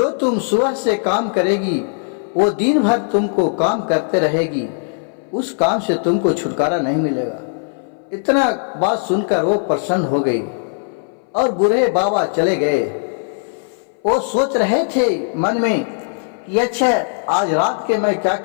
तुम सुबह से काम करेगी वो दिन भर तुमको काम करते रहेगी, उस काम से तुमको छुटकारा नहीं मिलेगा। इतना बात सुनकर वो प्रसन्न हो गई और बूढ़े बाबा चले गए। वो सोच रहे थे मन में कि अच्छा आज रात के मैं क्या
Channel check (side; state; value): right; silent; 61 dB below the other